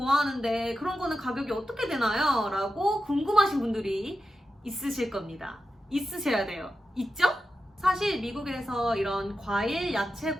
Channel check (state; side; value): normal; both; correlation 0.90